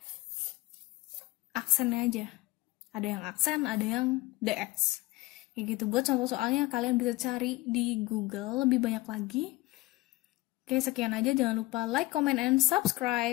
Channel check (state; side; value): quieter; right; 20.4 dB